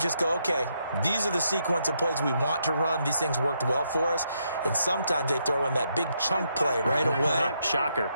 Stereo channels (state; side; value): inverted; both; correlation -0.78